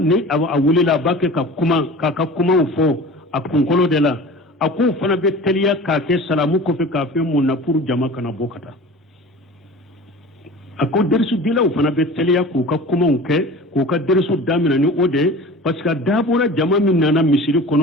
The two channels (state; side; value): normal; both; correlation 0.38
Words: awulila ba ke ka kuma fo a kunkolo de la a ko fana be teliya ka ke salamu ko fe ka fe mun na pour jama kana bokata a ko dersu dila o fana be teliya ko ka kuma ke ko ka dersu damina ni ode parce que dabora jama min nana misiri